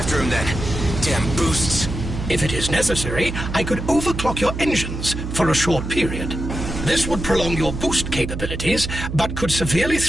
him then. Damn boosts. If it is necessary, I could overclock your engines for a short period. This would prolong your boost capabilities, but could severely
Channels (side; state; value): right; noise; hum, 6 dB below the sound